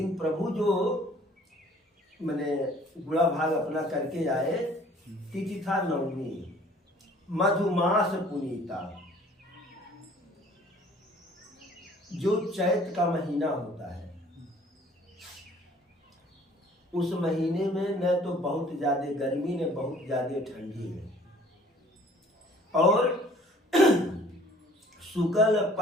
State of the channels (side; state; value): both; normal; correlation 0.54